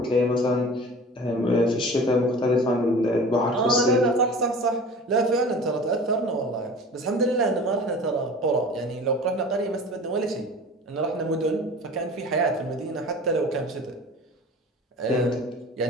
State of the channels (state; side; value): normal; both; correlation 0.40